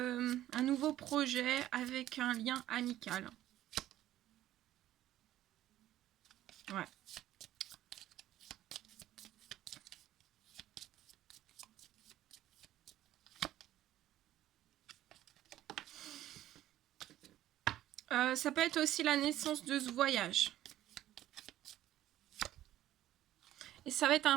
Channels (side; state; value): left; quieter; 13.5 dB